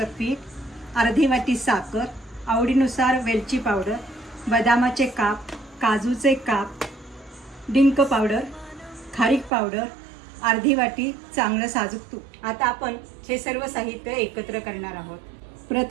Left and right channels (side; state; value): left; drops out; at 9.5 s